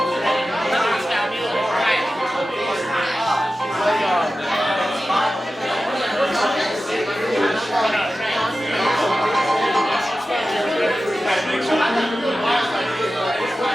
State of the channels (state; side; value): normal; both; correlation 0.94